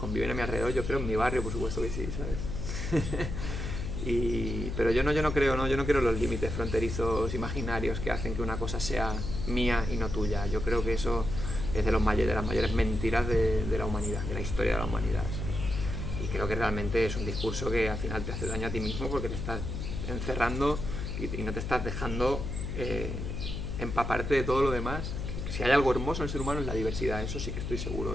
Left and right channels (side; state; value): left; noise; hum, 4 dB below the sound